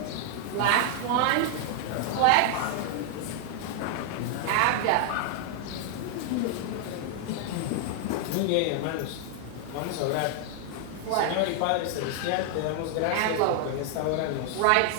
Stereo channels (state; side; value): different; both; correlation 0.00